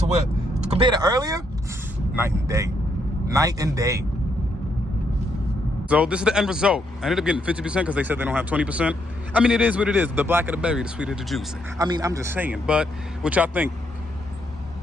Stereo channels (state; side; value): normal; both; correlation 0.75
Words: earlier? Night and day. Night and day. So this is the end result. I ended up getting 50% because they said they don't have 20%. I mean, it is what it is. The blacker the berry, the sweeter the juice. I mean, I'm just saying. But what y'all think?